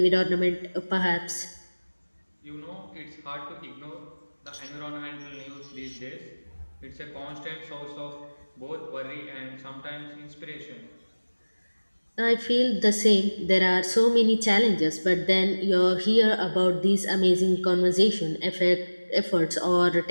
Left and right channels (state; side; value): inverted; both; correlation -1.00